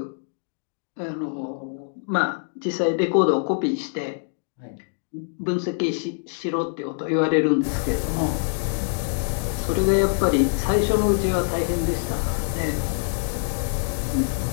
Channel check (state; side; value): silent; right; digital silence